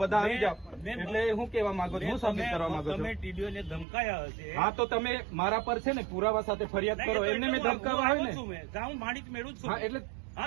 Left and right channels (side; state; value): left; drops out; at 3.9 s